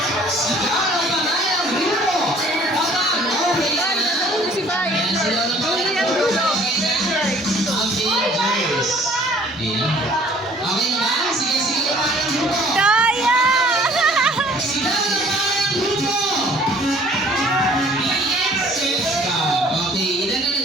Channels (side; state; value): both; normal; correlation 0.55